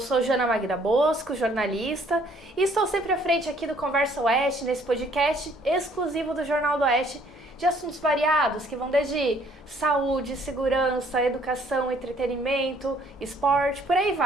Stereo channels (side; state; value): both; normal; correlation 0.62